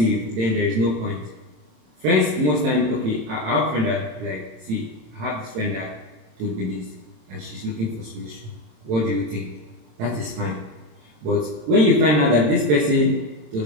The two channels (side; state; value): left; late; 27 ms